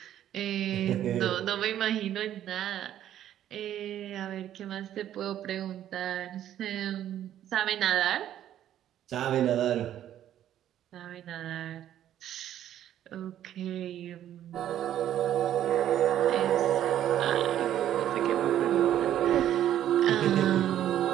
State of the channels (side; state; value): left; quieter; 11.4 dB